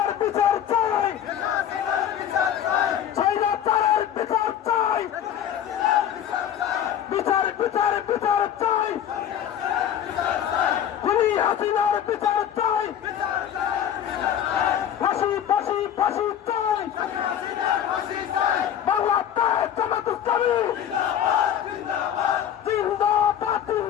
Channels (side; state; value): right; quieter; 9.8 dB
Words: বিচার চাই, স্বৈরাচারের বিচার চাই, বিচার বিচার বিচার চাই, খুনি হাসিনার বিচার চাই, ফাঁসি ফাঁসি ফাঁসি চাই, বাংলাদেশ জামাত ইসলামী জিন্দাবাদ